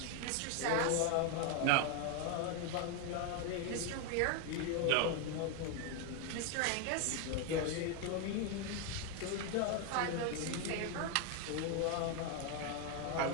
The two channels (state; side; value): different; both; correlation 0.01